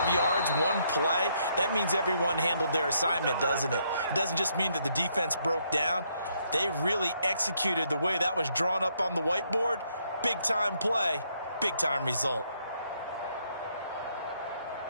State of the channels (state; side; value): inverted; both; correlation -0.73